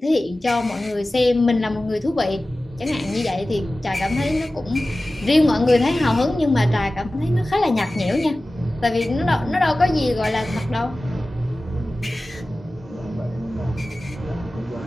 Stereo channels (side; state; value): both; normal; correlation 0.96